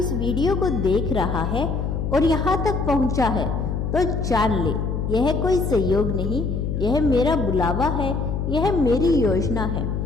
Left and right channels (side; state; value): left; noise; hum, 2 dB below the sound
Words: वीडियो को देख रहा है और यहाँ तक पहुँचा है तो जान ले, यह कोई संयोग नहीं, यह मेरा बुलावा है, यह मेरी योजना है